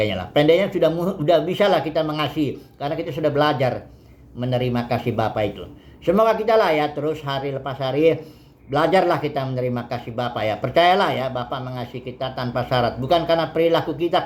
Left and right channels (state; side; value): identical; both; correlation 1.00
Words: lah. Pendeknya sudah bisa lah kita mengasihi karena kita sudah belajar menerima kasih Bapa itu. Semoga kita lah ya terus hari lepas hari belajarlah kita menerima kasih Bapa ya. Percayalah ya, Bapa mengasihi kita tanpa syarat. Bukan karena perilaku kita